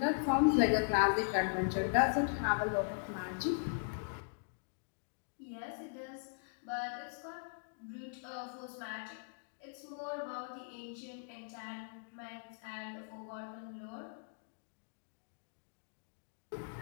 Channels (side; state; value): right; silent; digital silence